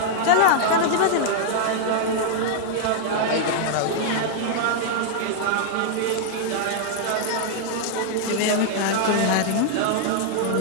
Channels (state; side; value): different; both; correlation -0.01